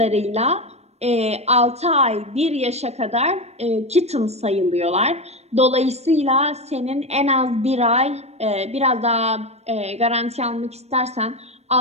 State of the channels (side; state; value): left; late; 0.31 ms